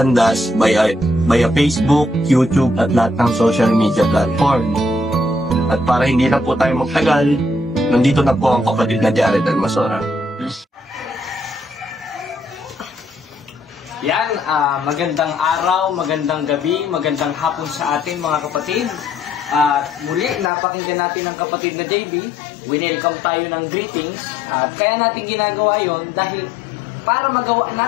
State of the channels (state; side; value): drops out; right; at 20.5 s